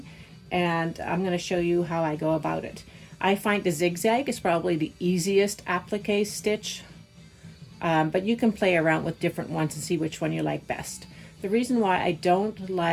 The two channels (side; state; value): both; identical; correlation 1.00